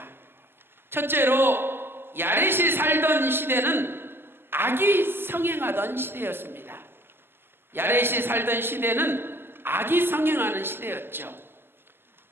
첫째로 야렛이 살던 시대는 악이 성행하던 시대였습니다. 야렛이 살던 시대는 악이 성행하는 시대였죠.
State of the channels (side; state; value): left; late; 0.11 ms